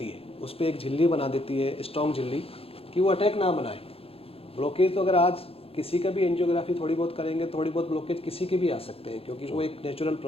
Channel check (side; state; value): right; late; 0.28 ms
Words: है, उस पर एक झिल्ली बना देती है, स्ट्रॉन्ग झिल्ली, कि वो अटैक ना बनाए। ब्लॉकेज तो अगर आज किसी का भी एंजियोग्राफी थोड़ी बहुत करेंगे, थोड़ी बहुत ब्लॉकेज किसी के भी आ सकते हैं, क्योंकि वो एक नेचुरल